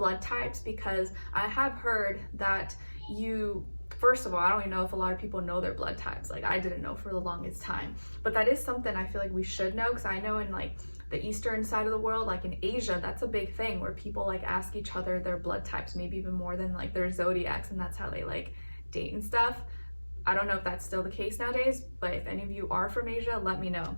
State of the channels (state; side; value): inverted; both; correlation -1.00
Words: types, because I have heard that first of all, I don't even know if a lot of people know their blood types. Like I didn't know for the longest time, but that is something I feel like we should know, because I know in like the eastern side of the world, like in Asia, that's a big thing where people like ask each other their blood types, maybe even more than like their zodiacs, and that's how they like date and stuff. I don't know if that's still the case nowadays, but if any of you are from Asia, let me know.